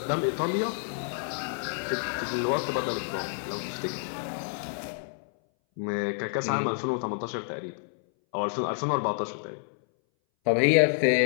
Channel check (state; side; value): silent; right; 59 dB below the other